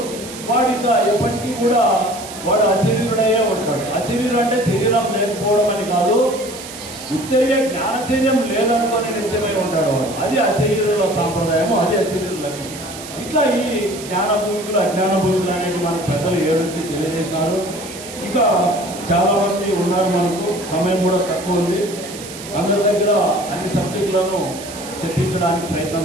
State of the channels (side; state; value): right; noise; hiss, 13 dB below the sound